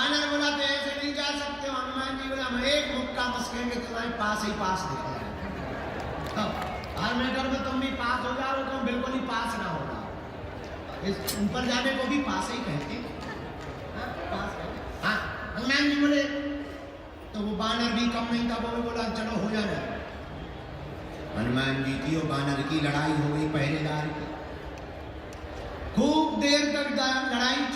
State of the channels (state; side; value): identical; both; correlation 1.00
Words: बोला तो ऐसे नहीं जा सकते हो। हनुमान जी बोला हम एक मुक्का मस्केंगे, तुम्हारे पास ही पास दिख रहा है। हर मैटर में तुम भी पास हो जाओ, तुम बिल्कुल ही पास ना होगा। इस ऊपर जाने को भी पास ही कहते। हाँ, हनुमान जी बोले तो वो बानर भी कम नहीं था, वो बोला चलो हो जाना। हनुमान जी की और बानर की लड़ाई हो गई पहरेदार की। खूब देर तक लड़ाई